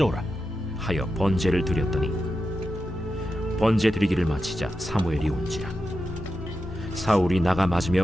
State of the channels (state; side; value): normal; both; correlation 0.90